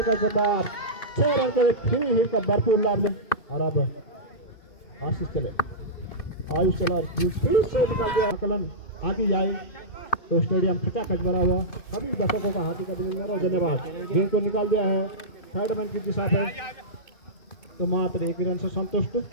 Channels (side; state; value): right; late; 2.5 ms